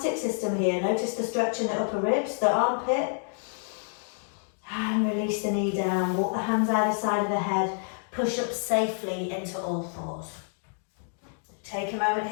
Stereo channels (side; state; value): right; silent; digital silence